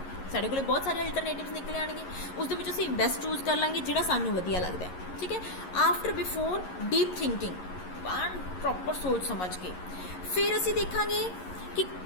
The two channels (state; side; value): late; right; 11 ms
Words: ਸਾਡੇ ਕੋਲ ਬਹੁਤ ਸਾਰੇ ਅਲਟਰਨੇਟਿਵਸ ਨਿਕਲ ਆਉਣਗੇ, ਉਸ ਦੇ ਵਿੱਚ ਅਸੀਂ ਬੈਸਟ ਚੂਜ਼ ਕਰ ਲਾਂਗੇ ਜਿਹੜਾ ਸਾਨੂੰ ਵਧੀਆ ਲੱਗਦਾ ਹੈ, ਠੀਕ ਹੈ। After before deep thinking, proper ਸੋਚ ਸਮਝ ਕੇ ਫਿਰ ਅਸੀਂ ਦੇਖਾਂਗੇ ਕਿ